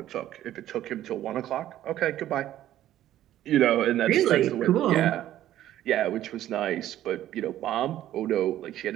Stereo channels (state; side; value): quieter; left; 12.8 dB